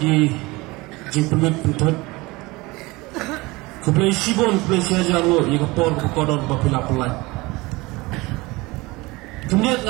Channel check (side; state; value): left; quieter; 22.6 dB